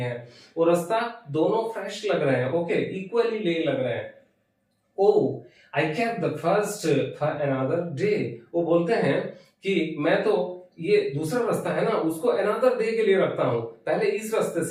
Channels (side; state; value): both; identical; correlation 1.00